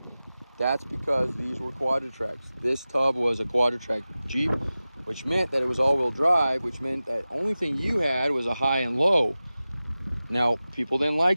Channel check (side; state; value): both; inverted; correlation -0.96